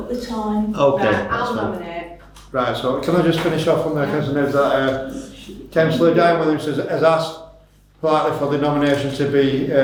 the time. okay, Right, that's I'll fine. nominate. Right, so can I just finish off on the councillor knows that Councillor Diane Williams has asked politely for the nomination to be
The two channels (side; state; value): both; identical; correlation 1.00